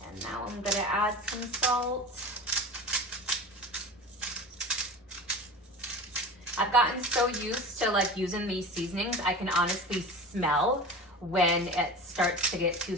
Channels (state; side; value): normal; both; correlation 0.32